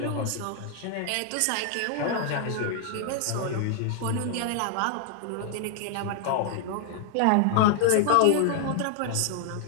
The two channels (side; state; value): both; different; correlation 0.00